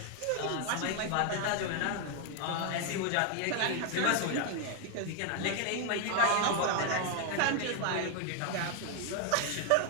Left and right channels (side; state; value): both; different; correlation 0.01